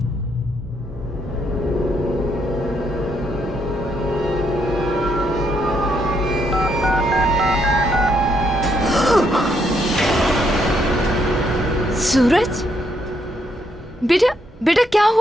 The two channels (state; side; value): normal; both; correlation 0.75